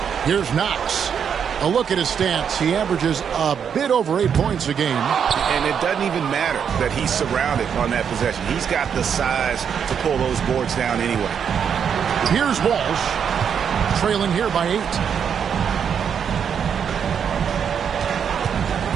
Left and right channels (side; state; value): left; quieter; 7.6 dB